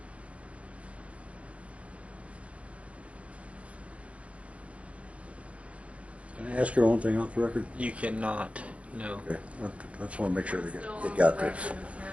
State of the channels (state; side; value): late; left; 0.063 ms